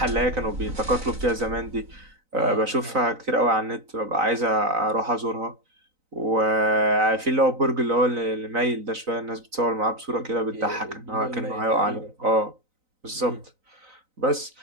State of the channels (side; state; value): left; late; 3.9 ms